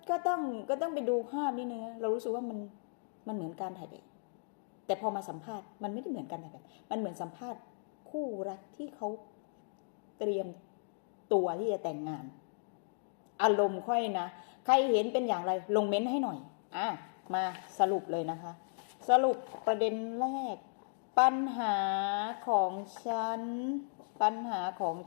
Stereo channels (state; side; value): silent; right; digital silence